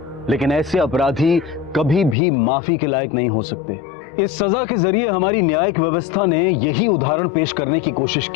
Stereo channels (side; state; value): right; drops out; at 2.1 s